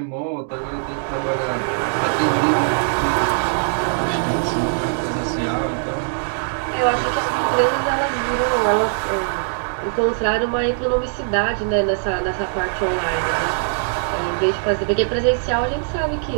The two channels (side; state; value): left; silent; digital silence